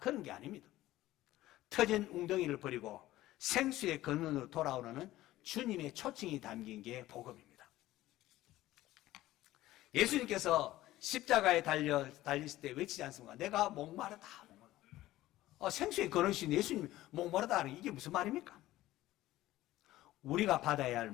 게 아닙니다. 터진 웅덩이를 버리고 생수의 근원으로 돌아오는 주님의 초청이 담긴 게 복음입니다. 예수님께서 십자가에 달렸을 때 외치지 않습니까? 내가 목마르다. 생수의 근원이신 예수님이 목마르다 하는 이게 무슨 말입니까? 우리가 받아야 할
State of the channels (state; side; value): quieter; right; 15.8 dB